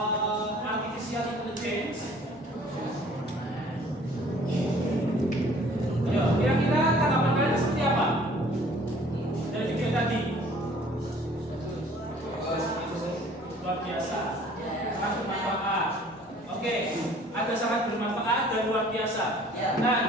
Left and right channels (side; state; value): both; normal; correlation 0.54